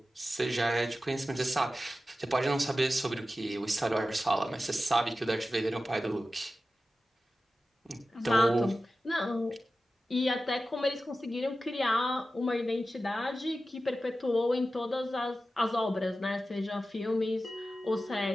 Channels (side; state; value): both; normal; correlation 0.94